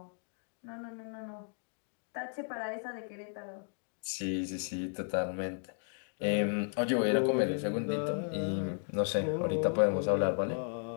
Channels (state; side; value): silent; right; 55 dB below the other